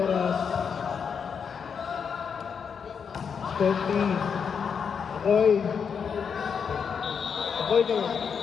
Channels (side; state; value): right; quieter; 6.6 dB